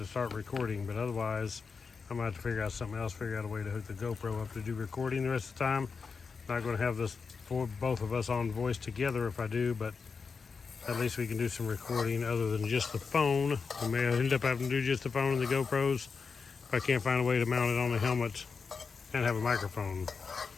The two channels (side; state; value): right; quieter; 5.2 dB